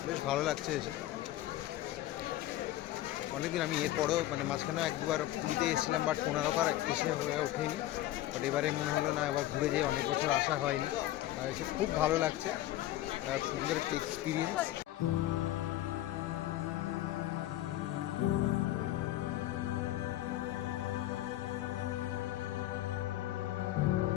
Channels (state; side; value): quieter; right; 14.8 dB